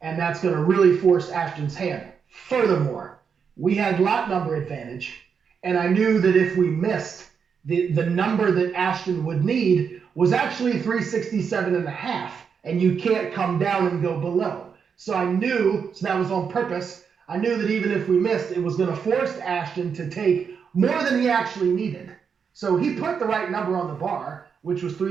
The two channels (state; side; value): quieter; left; 6.5 dB